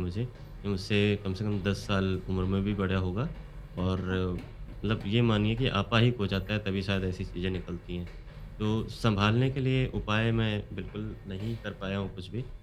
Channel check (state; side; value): identical; both; correlation 1.00